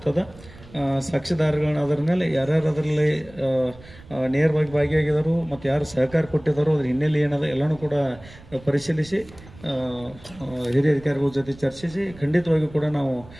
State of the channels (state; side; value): noise; right; rumble, 21 dB below the sound